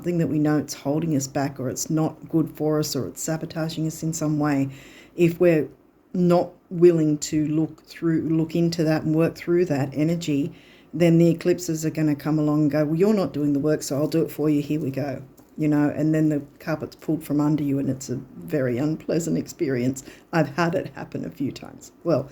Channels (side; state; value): both; identical; correlation 1.00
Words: that we know it's holding us back, or it's not good for us, or it's sabotaging us in some way, if we're not willing to look into that and work through that energy, then the eclipses are going to come along and go, well, you're not doing the work, so I'll do it for you, here we go. And then the carpet's pulled from under you, and it's a very unpleasant experience. I've had it happen a few times, well,